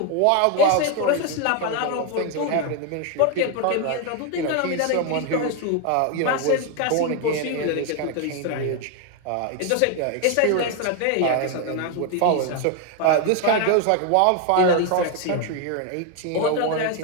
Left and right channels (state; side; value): different; both; correlation 0.01